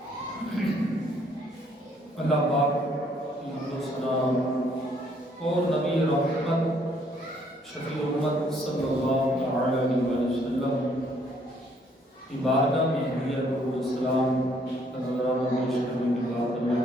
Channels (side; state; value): both; normal; correlation 0.66